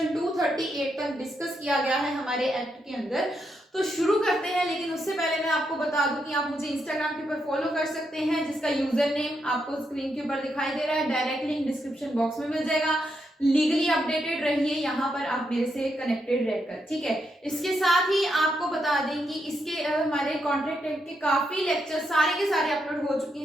238 तक डिस्कस किया गया है हमारे एक्ट के अंदर। तो शुरू करते हैं, लेकिन उससे पहले मैं आपको बता दूं कि आप मुझे इंस्टाग्राम के ऊपर फॉलो कर सकते हैं, जिसका यूजर नेम आपको स्क्रीन के ऊपर दिखाई दे रहा है, डायरेक्ट लिंक डिस्क्रिप्शन बॉक्स में मिल जाएगा। लीगली अपडेटेड रहिए यहाँ पर, आप मेरे से कनेक्टेड रहकर, ठीक है। इसके साथ ही आपको बता दें कि इसके हमारे कॉन्ट्रैक्ट एक्ट के काफी लेक्चर सारे के सारे अपलोड हो चुके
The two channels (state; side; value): normal; both; correlation 0.81